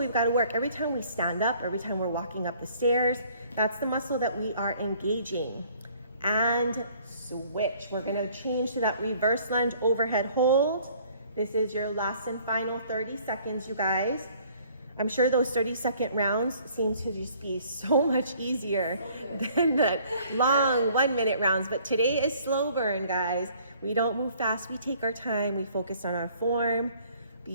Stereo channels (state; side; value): inverted; both; correlation -0.58